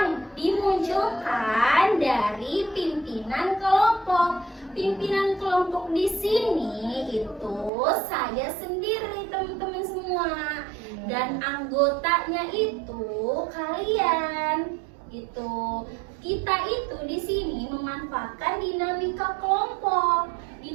dimunculkan dari pimpinan kelompok. Pimpinan kelompok di sini itu saya sendiri, teman-teman semua. Dan anggotanya itu kalian. Gitu. Kita itu di sini memanfaatkan dinamika kelompok.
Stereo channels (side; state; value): left; drops out; at 7.7 s